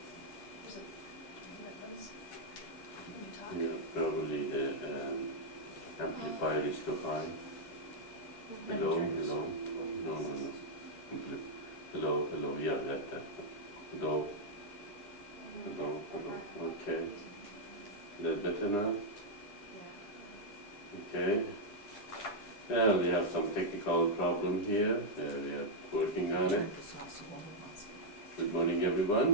Yeah, probably the amplifier is too high. Hello, hello. No, no, no. Hello, hello. Yeah, that. Hello, hello, hello. Okay. Is that better now? Okay. We have some technical problem here. We are working on it. Good morning,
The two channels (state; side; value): late; right; 10 ms